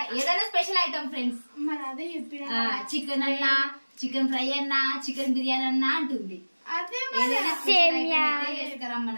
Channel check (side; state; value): both; inverted; correlation -1.00